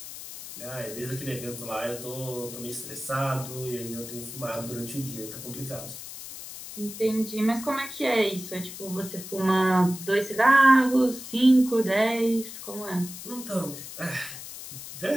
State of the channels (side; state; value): left; noise; hiss, 11 dB below the sound